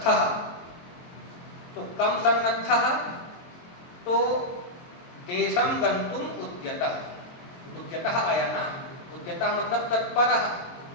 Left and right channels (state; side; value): late; right; 22 ms